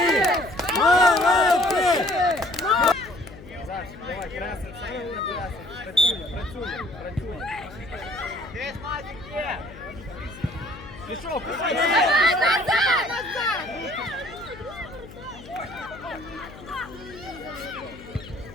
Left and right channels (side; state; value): left; noise; hum, 17 dB below the sound